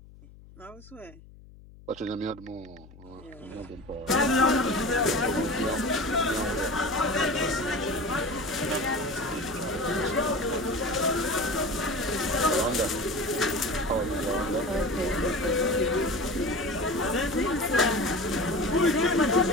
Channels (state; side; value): noise; left; hum, 21 dB below the sound